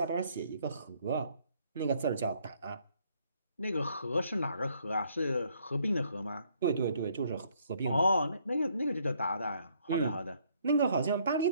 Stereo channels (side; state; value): both; inverted; correlation -0.67